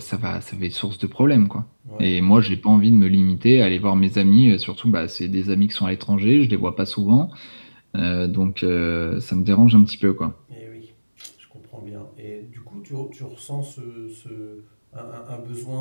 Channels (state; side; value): inverted; both; correlation -1.00